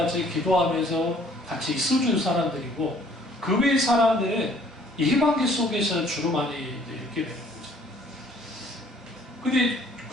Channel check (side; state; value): both; normal; correlation 0.58